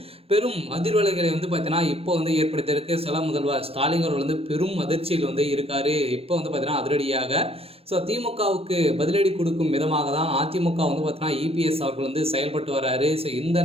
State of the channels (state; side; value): late; left; 0.28 ms